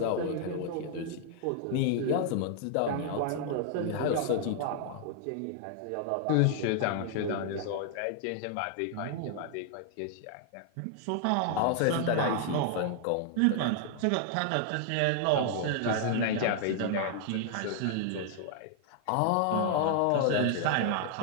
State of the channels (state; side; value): different; both; correlation 0.00